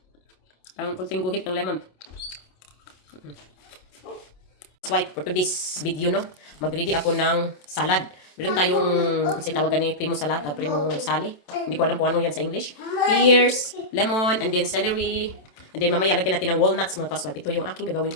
guhit ng lemon. Swipe for today's video, no? Mag-ready ako ng salad. Meron tayong, kasi tawagan ni Primo Salad, Primo Sali. Hindi ko alam kung ano yan sa English. Pears, lemon, and then celery. And then mamaya lagyan natin ng walnuts, mga ka-swipe. Ito yung aking gagawin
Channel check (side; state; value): right; late; 27 ms